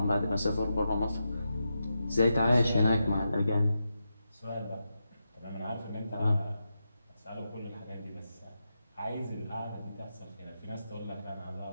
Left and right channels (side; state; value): both; inverted; correlation -0.88